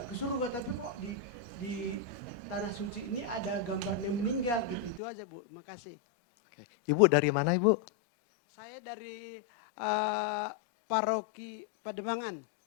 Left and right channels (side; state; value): right; drops out; at 5.0 s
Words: ke surga, tapi kok di tanah suci ini ada gambarnya meninggal gitu. Itu aja Bu. Terima kasih. Ibu dari mana Ibu? Saya dari Paroki Pademangan.